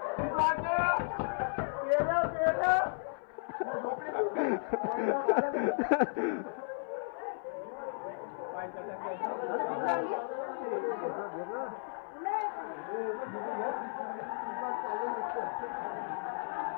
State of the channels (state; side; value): silent; right; 55 dB below the other